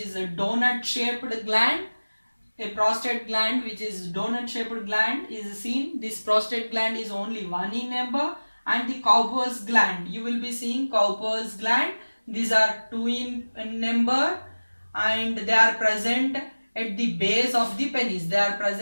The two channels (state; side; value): inverted; both; correlation -1.00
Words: a donut shaped gland. A prostate gland which is donut shaped gland is seen. This prostate gland is only one in number. And the Cowper's gland, you will be seeing Cowper's gland. These are two in number, and they are present at the base of the penis. They are